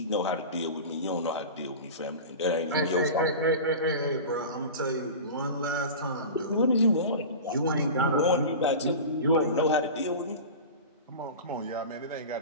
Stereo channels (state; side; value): inverted; both; correlation -0.31